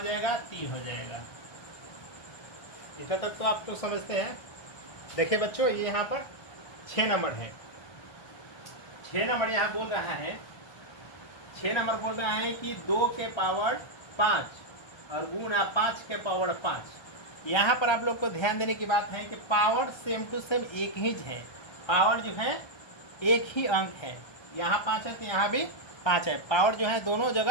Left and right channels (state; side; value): late; right; 1.3 ms